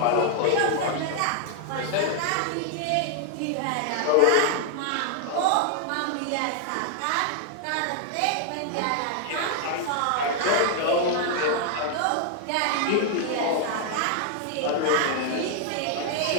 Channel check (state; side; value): different; both; correlation 0.00